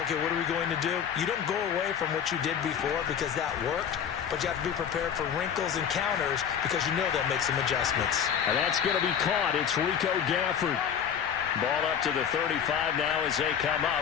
okay, what are we going to do? You don't go away from what you did before because that worked, but you have to be prepared for wrinkles and counters because you know they'll make some adjustments. And that's going to be caught. It's Rico Gafford. Ball up to the 35 now as they come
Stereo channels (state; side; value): quieter; right; 8.2 dB